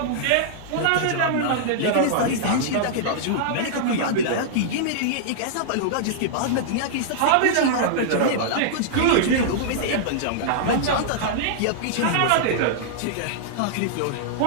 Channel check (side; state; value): both; different; correlation -0.02